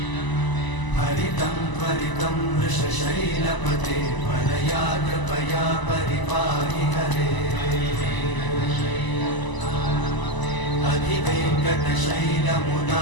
हरितं त्वरितं वृषशैलपते परया कृपया परिपाहि हरे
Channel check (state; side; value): late; right; 1.0 ms